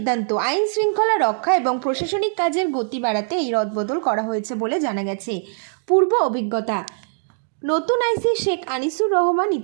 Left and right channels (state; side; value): silent; left; digital silence